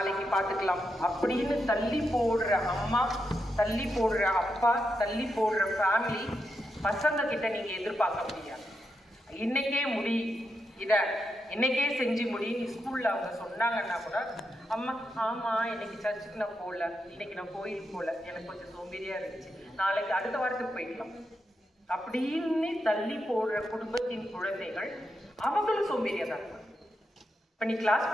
பார்த்துக்கலாம் அப்படின்னு தள்ளி போடுற அம்மா, தள்ளி போடுற அப்பா, தள்ளி போடுற ஃபேமிலி பசங்க கிட்ட நீங்க எதிர்பார்க்க முடியாது. இன்னைக்கே முடி, இதை இன்னைக்கே செஞ்சு முடின்னு ஸ்கூல்ல அவங்க சொன்னாங்கன்னா கூட, அம்மா ஆமாம் இன்னைக்கு சர்ச்சுக்கு நான் போகல, இன்னைக்கு நான் கோயிலுக்கு போகல, எனக்கு கொஞ்சம் சோம்பேறியா இருந்துச்சு, நாளைக்கு அடுத்த வாரத்துக்கு போய்க்கலாம் அப்படின்னு தள்ளி போடுற குடும்பத்தின் குழந்தைகள் அவங்களும் சோம்பேறியா தான் இருப்பாங்க. இப்போ நீ கிளாஸ்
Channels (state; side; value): normal; both; correlation 0.85